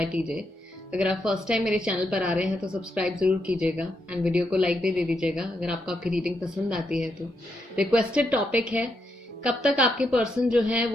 TJ. अगर आप first time मेरे channel पर आ रहे हैं तो सब्सक्राइब जरूर कीजिएगा एंड वीडियो को लाइक भी दे दीजिएगा अगर आपको आपकी रीडिंग पसंद आती है तो। रिक्वेस्टेड टॉपिक है, कब तक आपके पर्सन जो है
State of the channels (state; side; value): normal; both; correlation 0.81